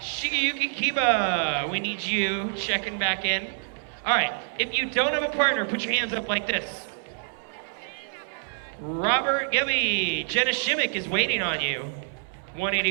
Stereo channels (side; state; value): left; silent; 60 dB below the other